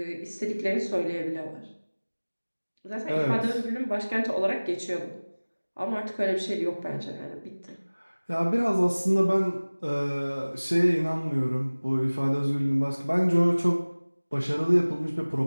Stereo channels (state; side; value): inverted; both; correlation -1.00